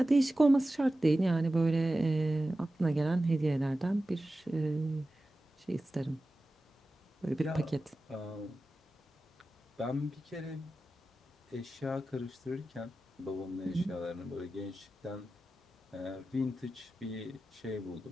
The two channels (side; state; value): both; normal; correlation 0.94